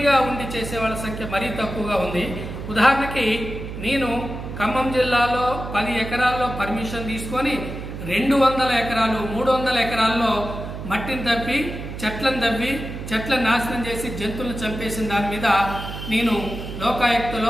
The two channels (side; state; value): right; noise; hum, 8 dB below the sound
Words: ఉండి చేసేవాళ్ళ సంఖ్య మరీ తక్కువగా ఉంది. ఉదాహరణకి నేను ఖమ్మం జిల్లాలో 10 ఎకరాల్లో పర్మిషన్ తీసుకొని 200 ఎకరాలు 300 ఎకరాల్లో మట్టిని తవ్వి చెట్లను నాశనం చేసి జంతువులను చంపేసిన దాని మీద నేను